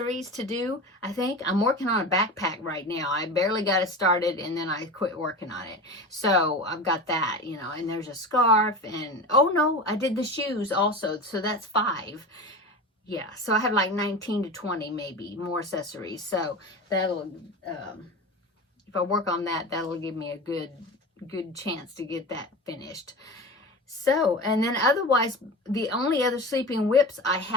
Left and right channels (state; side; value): normal; both; correlation 0.29